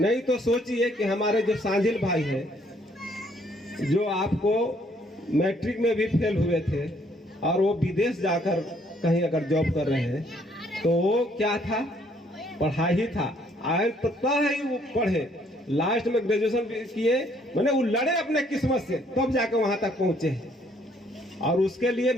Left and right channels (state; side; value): normal; both; correlation 0.65